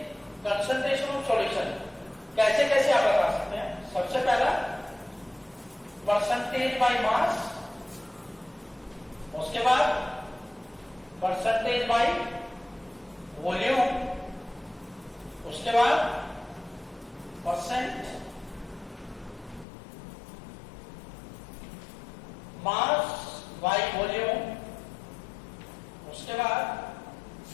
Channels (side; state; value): right; drops out; at 19.7 s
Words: कंसंट्रेशन ऑफ सॉल्यूशन कैसे कैसे आप बता सकते हैं. सबसे पहला परसेंटेज बाय मास, उसके बाद परसेंटेज बाय वॉल्यूम, उसके बाद परसेंट मास बाय वॉल्यूम, उसके बाद